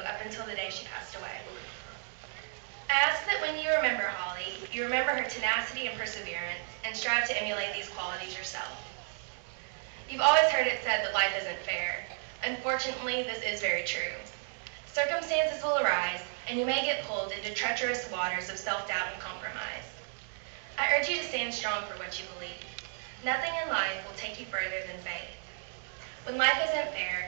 until the day she passed away. I ask that when you remember Holly, you remember her tenacity and perseverance, and strive to emulate these qualities yourself. You've always heard it said that life isn't fair. Unfortunately, this is very true. Circumstances will arise, and you may get pulled into treacherous waters of self-doubt and compromise. I urge you to stand strong for what you believe. Nothing in life will take you further than faith. When life isn't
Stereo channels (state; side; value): silent; left; 56 dB below the other